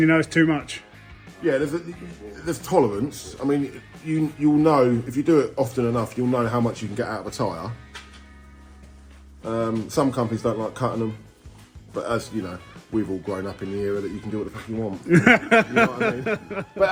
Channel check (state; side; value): identical; both; correlation 1.00